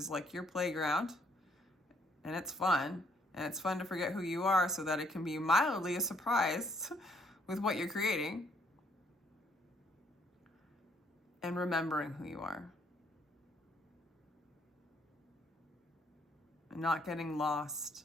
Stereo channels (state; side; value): normal; both; correlation 0.67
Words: like your playground and it's fun to forget who you are so that it can be mildly a surprise with what you're creating, and remembering who you are and not getting lost